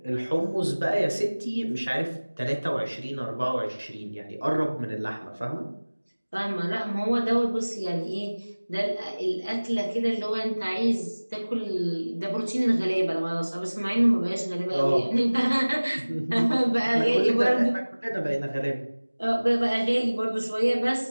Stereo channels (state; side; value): inverted; both; correlation -1.00